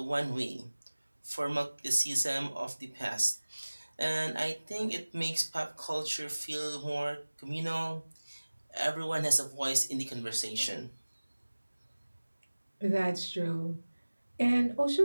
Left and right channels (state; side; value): inverted; both; correlation -1.00